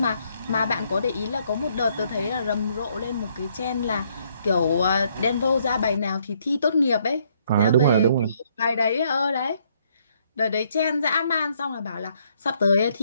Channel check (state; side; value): inverted; both; correlation -0.70